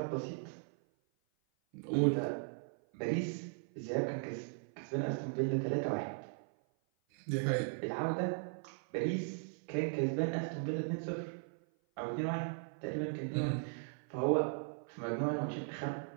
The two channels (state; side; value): silent; left; 53 dB below the other